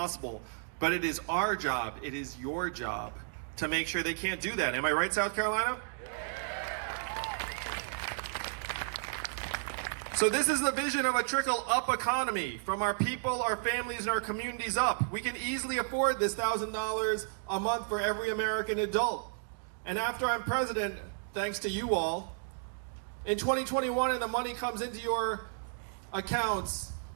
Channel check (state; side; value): silent; left; digital silence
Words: But it is our job, it is your job to make sure they can't do that. Am I right, South Carolina? So this is the vision of a trickle-up economy from our people, our families, and our communities up. We can easily afford this $1,000 a month for every American adult. And after I'm president, thanks to you all, in 2021 and the money comes into your accounts,